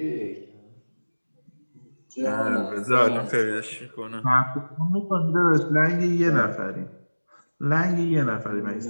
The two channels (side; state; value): both; inverted; correlation -1.00